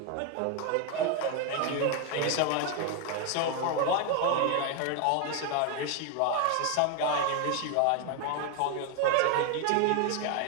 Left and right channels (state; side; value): different; both; correlation 0.01